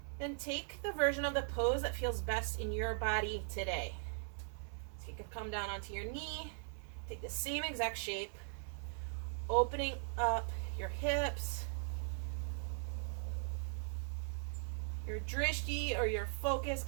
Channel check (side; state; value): left; silent; 51 dB below the other